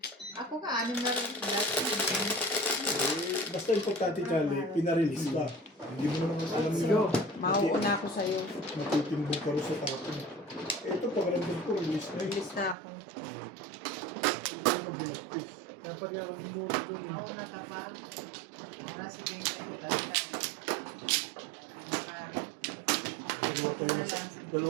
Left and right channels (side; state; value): left; drops out; at 12.8 s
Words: Ako ka, anim na rin. Basta importante, Charlie, pinarelease ka. Hindi mo naman alam Sige. Mauuna ako sa'yo. matitimbong ka rin sa tao. Ito, pag nandun ko, release na yun. Bilis na ako. Ito yung binagpis. Dapat nga ako bumuro doon. Ako na ka pa. Nasa 20 lang.